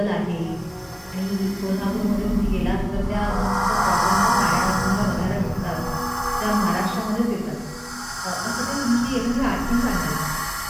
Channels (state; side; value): identical; both; correlation 1.00